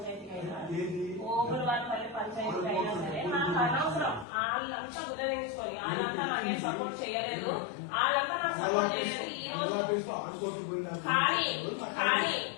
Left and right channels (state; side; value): drops out; right; at 4.2 s